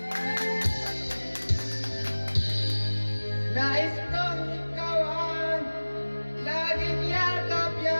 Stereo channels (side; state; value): both; inverted; correlation -1.00